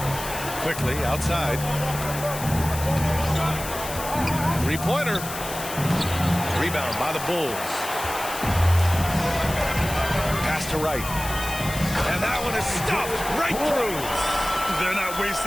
Quickly outside. Three-pointer. Rebound by the Bulls. Pass to Wright. And that one is stuffed right through. They're not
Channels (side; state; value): left; noise; hiss, 9 dB below the sound